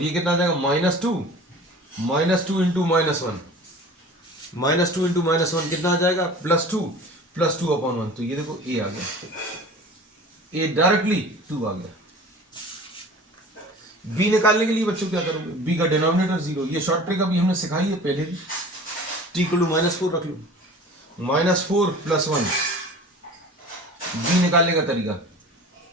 ये कितना आ जाएगा, -2 इंटू -1 -2 इंटू -1 कितना आ जाएगा, +2 अपॉन 1। तो ये देखो a आ गया, a डायरेक्टली 2 आ गया। b निकालने के लिए बच्चों क्या करोगे, b का डिनोमिनेटर 0, ये शॉर्ट ट्रिक अभी हमने सिखाई है पहले भी। t इक्वल टू -4 रख लो, -4 + 1। b निकालने का तरीका,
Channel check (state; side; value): normal; both; correlation 0.41